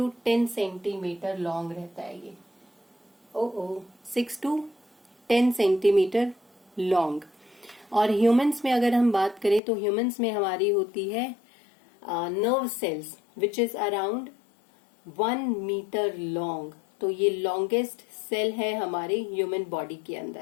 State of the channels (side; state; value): right; drops out; at 9.6 s